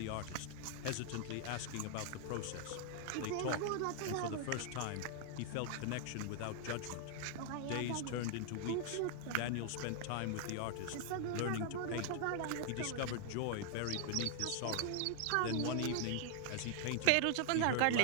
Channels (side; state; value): both; different; correlation 0.00